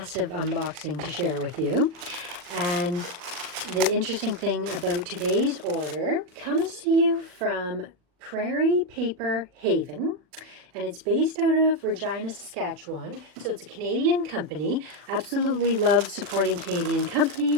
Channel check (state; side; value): late; left; 40 ms